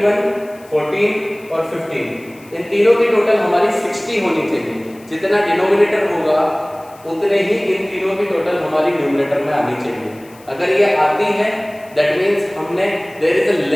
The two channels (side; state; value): left; noise; hiss, 26 dB below the sound